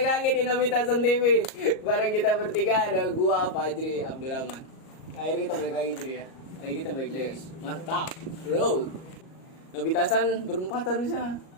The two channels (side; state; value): right; late; 38 ms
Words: lagi di Nobitasan TV. Bareng kita bertiga ada gua Fajri Abdurrahman. Akhirnya kita balik lagi Jri ya. Akhirnya kita balik lagi. Mantap, bro. Nobitasan berempat harusnya.